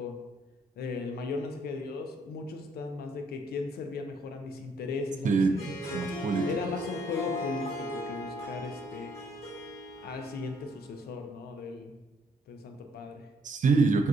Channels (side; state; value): both; normal; correlation 0.68